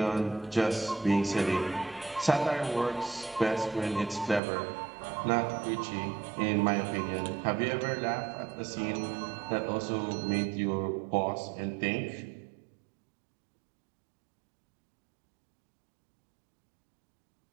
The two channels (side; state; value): left; drops out; at 4.4 s